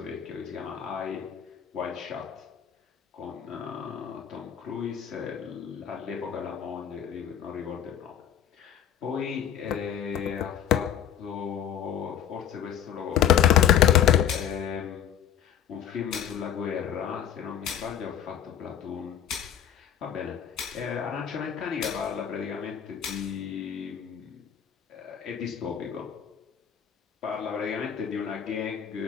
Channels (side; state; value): right; quieter; 9.7 dB